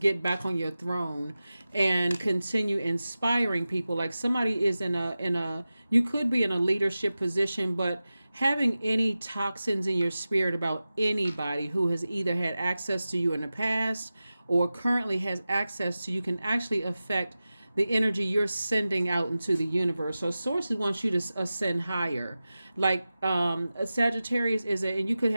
back on your throne and continue inspiring people. Like somebody is in a you could be in a leadership position, but having any toxins in your spirit about anybody who has either had access to you in the past or currently has access to you can actually affect the energy you're sending out into the universe. So Source wants you to ascend higher. Like a Sagittarius and you could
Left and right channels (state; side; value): inverted; both; correlation -0.95